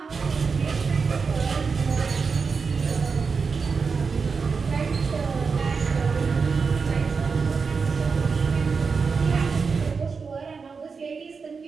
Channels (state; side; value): quieter; left; 5.1 dB